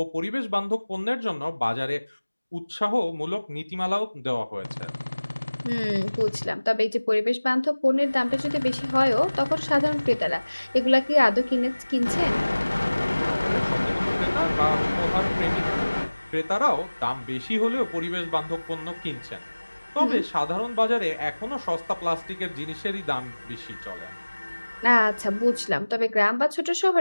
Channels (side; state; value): both; inverted; correlation -1.00